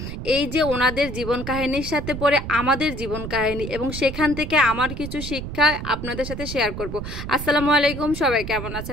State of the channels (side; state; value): right; noise; rumble, 7 dB below the sound